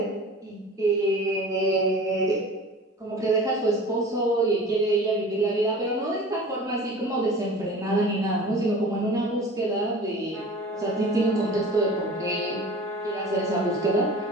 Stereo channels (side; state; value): both; normal; correlation 0.40